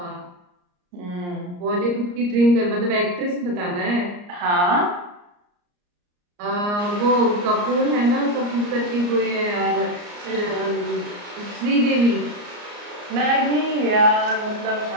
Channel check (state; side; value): late; left; 34 ms